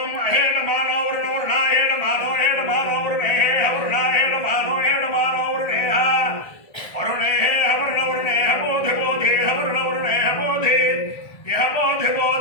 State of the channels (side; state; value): right; late; 1.6 ms